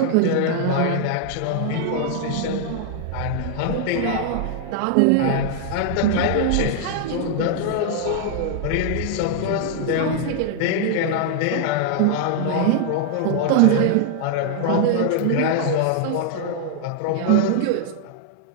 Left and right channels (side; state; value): both; different; correlation 0.00